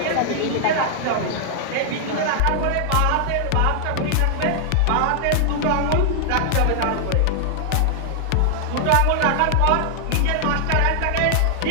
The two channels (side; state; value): both; different; correlation 0.00